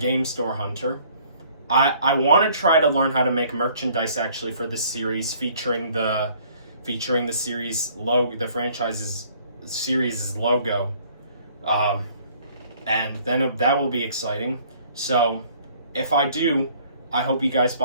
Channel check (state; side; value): inverted; both; correlation -0.58